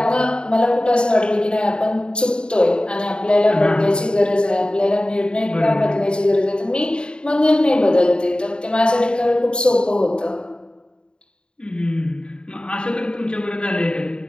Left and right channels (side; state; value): right; late; 0.050 ms